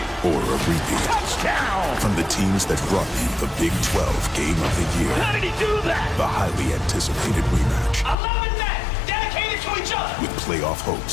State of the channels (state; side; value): drops out; right; at 8.2 s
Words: Or a repeat. Touchdown! From the teams that brought you the Big 12 Game of the Year. How did he do that? The highly anticipated rematch. 11 men dedicated to each other. With playoff